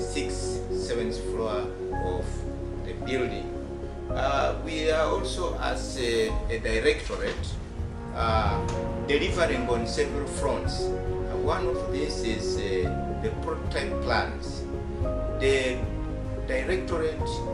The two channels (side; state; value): both; identical; correlation 1.00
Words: 7th floor of the building. We are also, as a directorate, delivering on several fronts. One of these is the prototype plans. The directorate